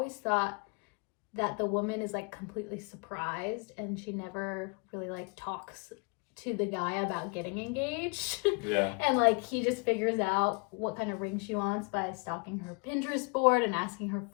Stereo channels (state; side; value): quieter; right; 32.8 dB